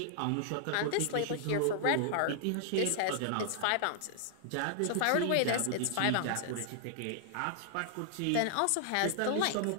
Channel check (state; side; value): different; both; correlation -0.01